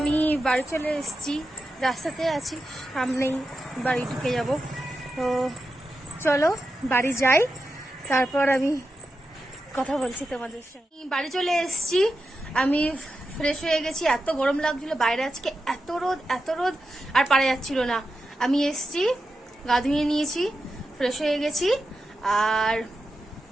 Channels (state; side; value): normal; both; correlation 0.90